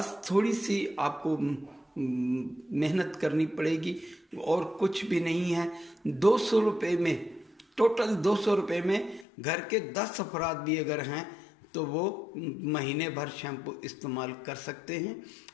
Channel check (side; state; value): right; drops out; at 9.2 s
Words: थोड़ी सी आपको मेहनत करनी पड़ेगी और कुछ भी नहीं है। 200 रुपये में, टोटल 200 रुपये में घर के 10 अफराद भी अगर हैं तो वो महीने भर शैम्पू इस्तेमाल कर सकते हैं।